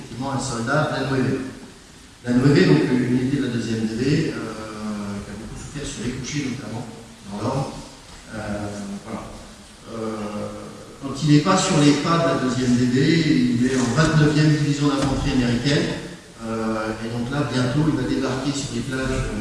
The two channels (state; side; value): identical; both; correlation 1.00